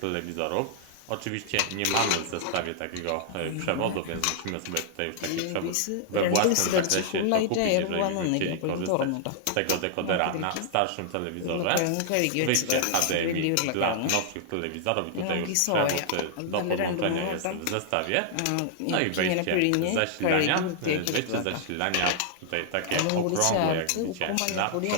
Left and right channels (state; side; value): different; both; correlation -0.01